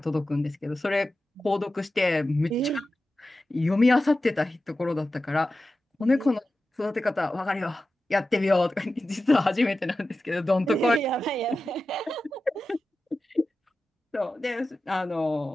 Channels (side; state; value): both; normal; correlation 0.93